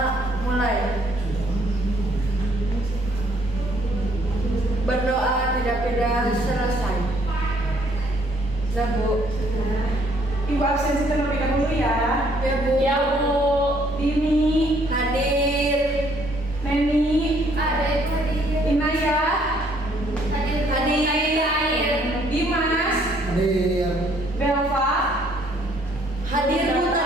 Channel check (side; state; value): both; normal; correlation 0.65